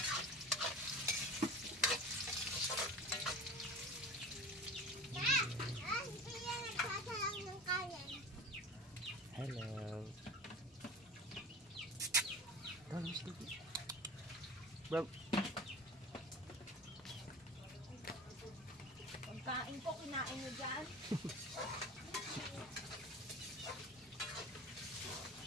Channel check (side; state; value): both; normal; correlation 0.35